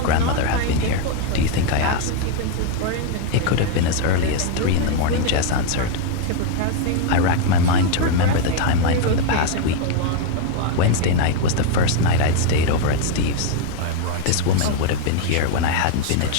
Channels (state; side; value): different; both; correlation 0.01